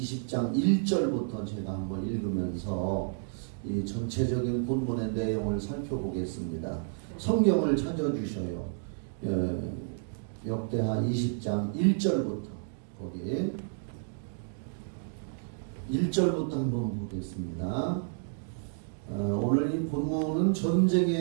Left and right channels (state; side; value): silent; left; digital silence